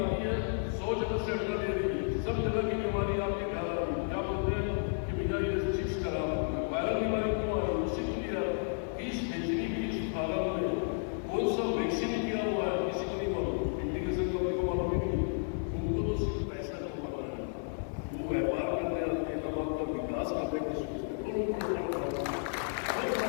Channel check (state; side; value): silent; right; 56 dB below the other